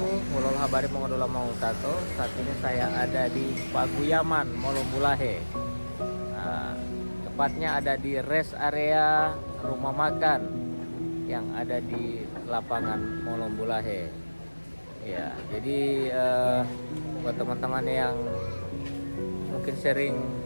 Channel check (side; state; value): both; inverted; correlation -1.00